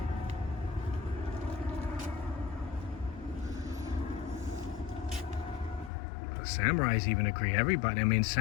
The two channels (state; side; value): drops out; right; at 5.9 s